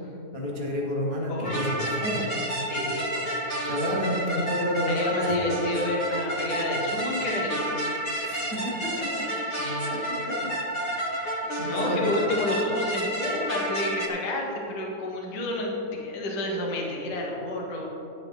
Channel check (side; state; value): right; late; 9.4 ms